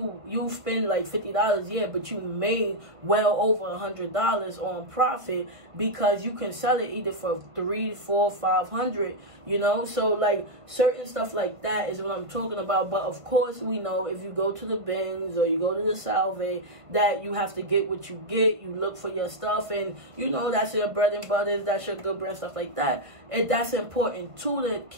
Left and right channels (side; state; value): left; late; 1.3 ms